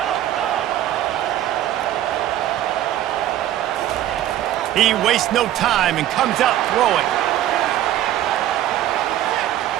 He wastes no time and comes out throwing.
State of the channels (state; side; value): quieter; left; 12.7 dB